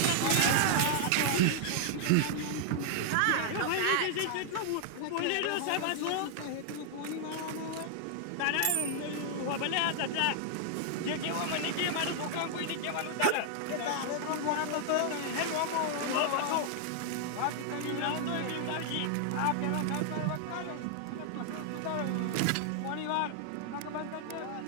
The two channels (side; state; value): both; different; correlation 0.00